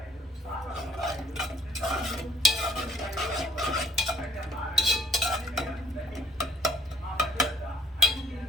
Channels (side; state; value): both; normal; correlation 0.61